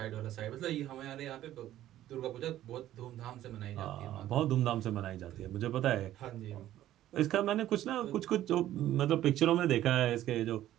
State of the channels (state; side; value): quieter; left; 13.2 dB